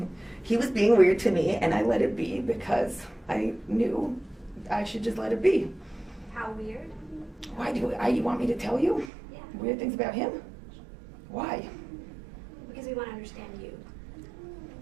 He was being weird to me, and I let it be because I knew I should just let it be. how weird? Why you want me to tell you Yeah. weird things about him? Why? Because we want to understand you.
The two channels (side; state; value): left; drops out; at 9.1 s